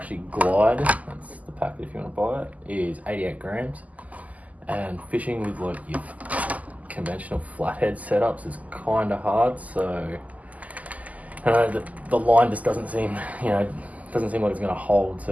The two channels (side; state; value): left; late; 0.076 ms